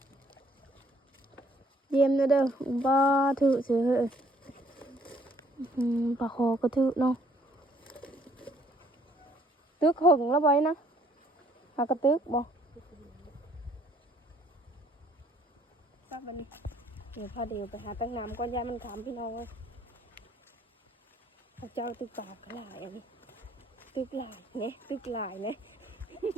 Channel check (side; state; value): both; normal; correlation 0.63